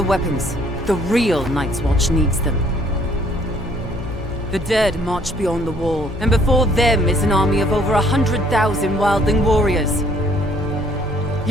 weapons. The real Night's Watch needs them. The dead march beyond the wall, and before them is an army of over 100,000 wildling warriors.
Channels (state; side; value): normal; both; correlation 0.61